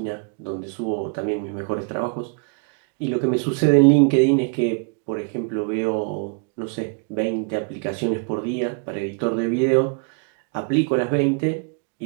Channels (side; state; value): left; quieter; 37.2 dB